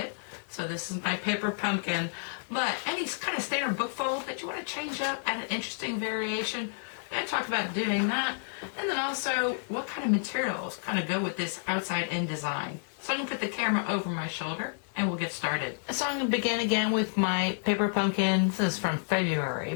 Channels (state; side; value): silent; right; digital silence